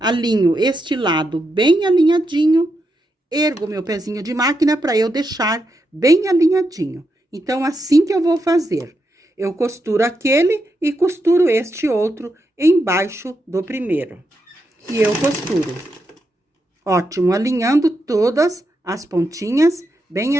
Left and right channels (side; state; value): both; normal; correlation 0.84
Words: este lado bem alinhadinho, ergo meu pezinho de máquina para eu deixar bem alinhadinho. Então, assim que eu vou fazer, eu costuro aquele e costuro este outro embaixo do primeiro. E eu costuro. Ótimo, alinhando todas as pontinhas bem